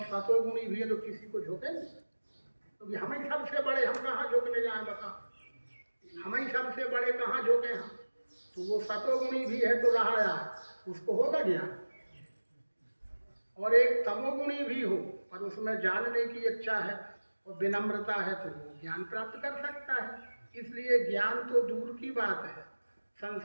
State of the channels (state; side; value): inverted; both; correlation -1.00